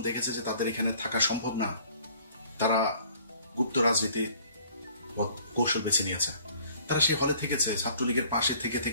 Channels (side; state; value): both; inverted; correlation -0.55